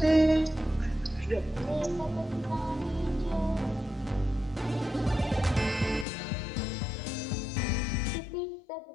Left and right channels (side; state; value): right; drops out; at 6.1 s